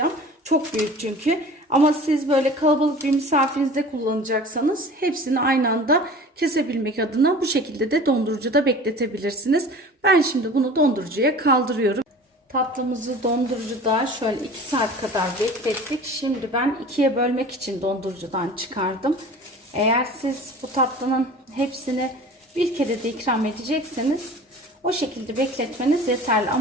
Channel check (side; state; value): both; normal; correlation 0.41